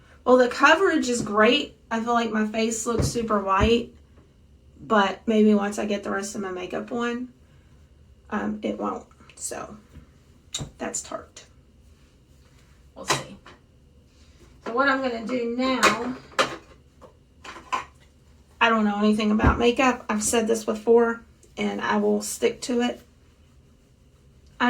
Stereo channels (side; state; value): both; identical; correlation 1.00